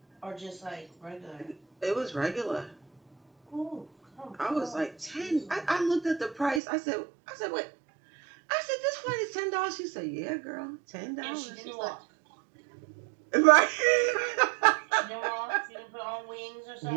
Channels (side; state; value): left; drops out; at 6.6 s